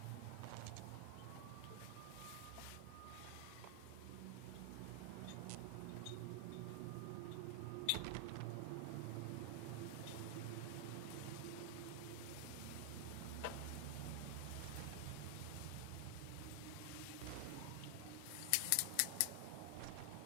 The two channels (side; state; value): both; different; correlation 0.00